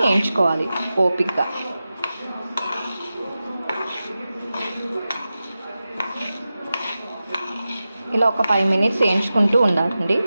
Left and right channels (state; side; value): inverted; both; correlation -0.93